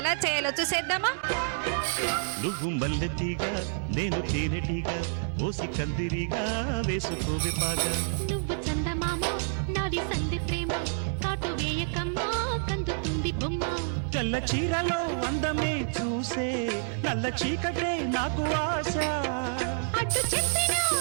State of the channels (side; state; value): left; silent; 59 dB below the other